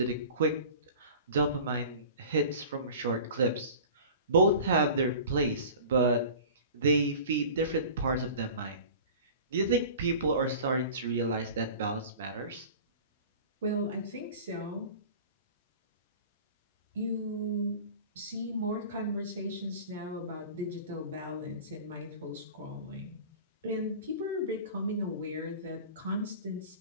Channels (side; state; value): both; inverted; correlation -0.40